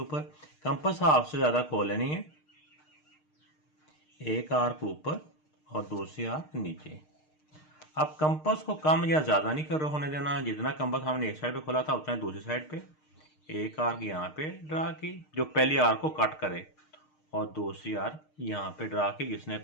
कंपास हाफ से ज़्यादा खोल लेनी है, एक आर्क ऊपर और दूसरी आर्क नीचे। अब कंपास को कम या ज़्यादा नहीं कर होने देना, जितना कंपास हमने एक साइड पे खोला था उतना दूसरी साइड पे एक आर्क यहाँ पे ड्रा की जो पहली आर्क को कट करे, और दूसरी आर्क यहाँ पे ड्रा की जिसने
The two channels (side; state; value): right; late; 6.5 ms